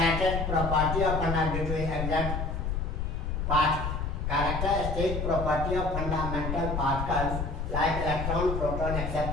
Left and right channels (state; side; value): noise; left; rumble, 2 dB below the sound